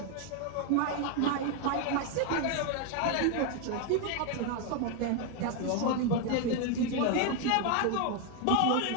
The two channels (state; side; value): different; both; correlation 0.01